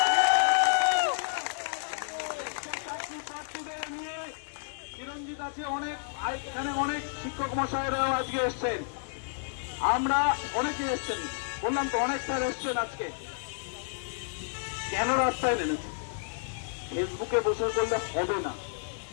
নিয়ে চিরঞ্জিত আছে, এখানে অনেক শিক্ষক মশাইরাও আজকে এসছেন, আমরা অনেকে এসছেন, বললাম তো অনেক স্যার এসছেন আজকে। কেন রাস্তায় নেমেছে? ফেসবুকে বসে করলে হবে না।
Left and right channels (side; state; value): right; silent; digital silence